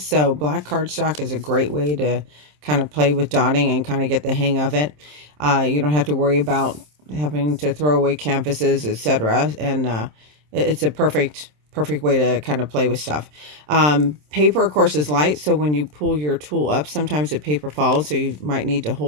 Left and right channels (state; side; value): late; left; 27 ms